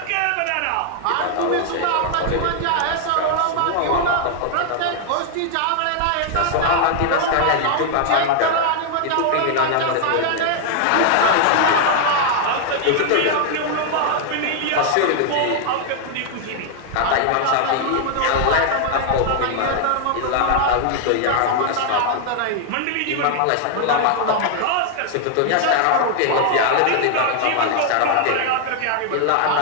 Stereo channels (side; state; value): both; different; correlation 0.00